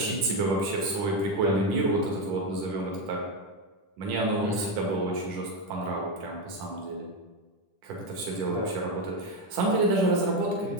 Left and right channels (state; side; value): late; left; 10 ms